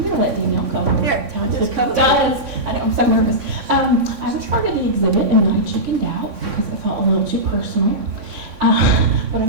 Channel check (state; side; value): late; left; 3.6 ms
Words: going to let Danielle cover. Here, just cover. I'm so nervous. I was part of the exhibit and I chickened out because I felt a little too personal. But